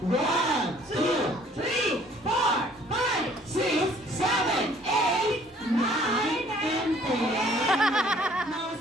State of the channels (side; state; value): both; normal; correlation 0.58